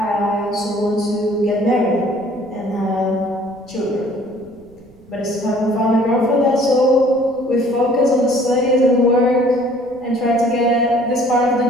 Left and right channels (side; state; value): right; noise; rumble, 27 dB below the sound